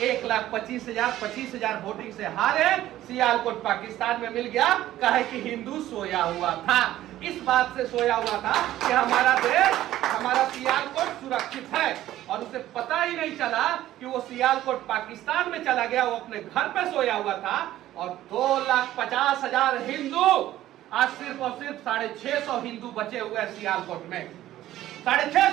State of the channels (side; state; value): left; quieter; 13.9 dB